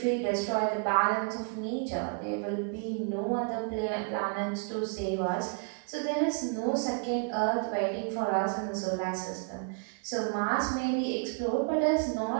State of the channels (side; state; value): left; quieter; 38.4 dB